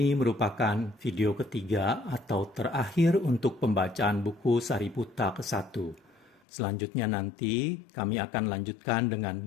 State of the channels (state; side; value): drops out; right; at 6.4 s